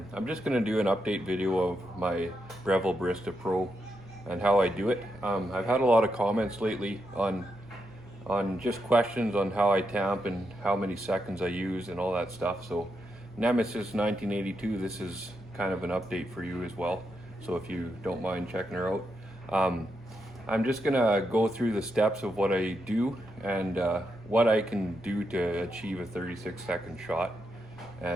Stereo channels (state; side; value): normal; both; correlation 0.83